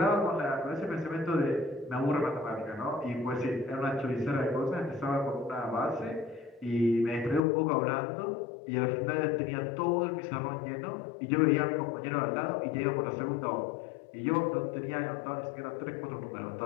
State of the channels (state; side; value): drops out; right; at 7.4 s